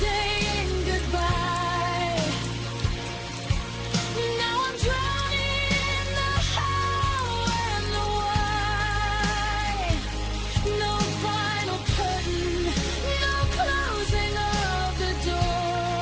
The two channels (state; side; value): identical; both; correlation 1.00